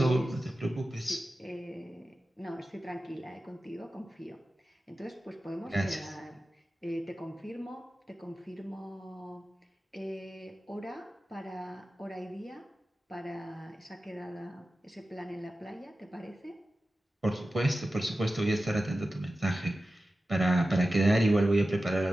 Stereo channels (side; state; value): both; normal; correlation 0.94